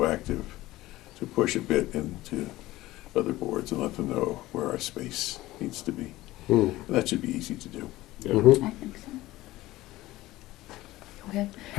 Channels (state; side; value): quieter; right; 17.3 dB